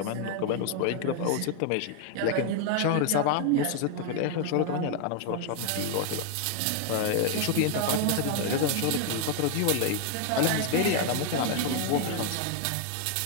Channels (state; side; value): different; both; correlation 0.00